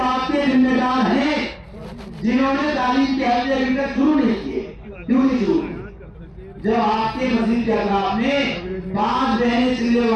کے ذمہ دار ہیں جنہوں نے تعلیم کے حلقے ابھی تک شروع نہیں کیے. کیوں نہیں شروع کیے؟ جب آپ کے مسجد کے اطراف میں 5 بہنیں چلے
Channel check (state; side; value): identical; both; correlation 1.00